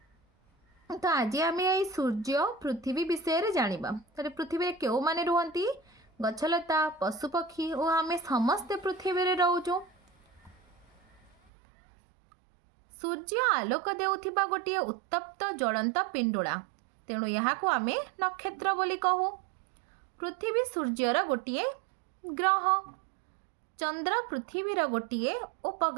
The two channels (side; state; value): left; drops out; at 11.3 s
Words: तो आज आम ये सूर्य पृथ्वी विषय जानिबा। तो पृथ्वी रे केउ माने रुहंती, गछलता, पशुपक्षी और आम समस्ते पृथ्वी रे रहूचु। सूर्य आलोक देउथिबा गोटे उत्तप्त ज्वलंत पिंडुला, तेणु यहाँ को आम नक्षत्र बोली कहू। पृथ्वी सूर्यर गोटे ग्रह, चंद्र पृथ्वीर गोटे